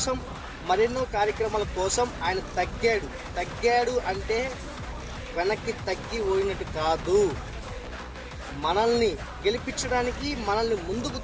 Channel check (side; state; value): both; identical; correlation 1.00